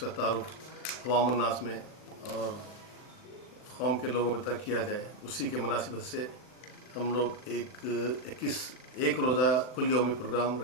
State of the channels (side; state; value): right; late; 39 ms